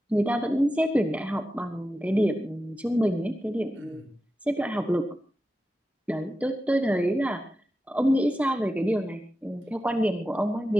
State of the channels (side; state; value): both; normal; correlation 0.91